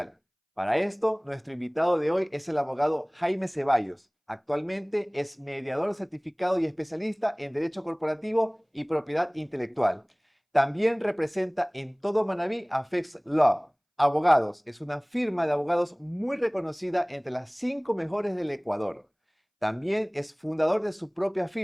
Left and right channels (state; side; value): identical; both; correlation 1.00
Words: Para esto, nuestro invitado de hoy es el abogado Jaime Ceballos. Actualmente es mediador certificado y especialista en Derecho Corporativo y Propiedad Intelectual. También representa en todo Manabí a Fex Law. Abogados es una firma de abogados muy reconocida entre las 5 mejores del Ecuador. También es fundador de su propia